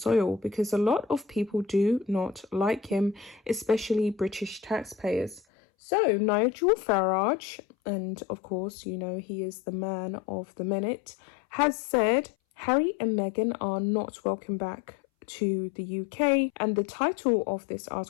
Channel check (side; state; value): right; drops out; at 5.4 s